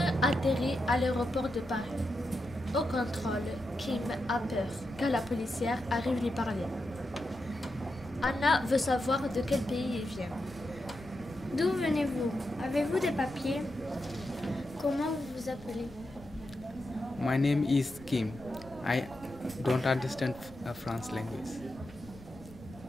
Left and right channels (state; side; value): noise; left; rumble, 20 dB below the sound